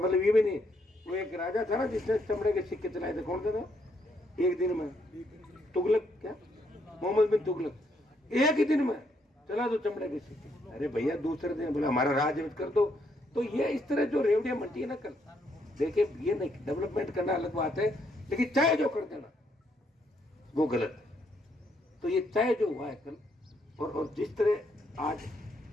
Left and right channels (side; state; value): both; normal; correlation 0.74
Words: ये भी नहीं। वो एक राजा था ना जिसने चमड़े के सिक्के चलाए थे, कौन थे, एक दिन में तुगलक, क्या मोहम्मद बिन तुगलक, एक ही दिन में चला दो चमड़े के सिक्के। अरे भैया दूसरे दिन बोला हमारा राज कर दो। तो ये इस तरह जो रेवड़ियां मंटी है ना, कल देखिए ये नहीं, डेवलपमेंट करना अलग बात है, लेकिन चाहे जो कर देना वो गलत है। तो ये चाहे जो हुआ है कल, और जिस तरह आज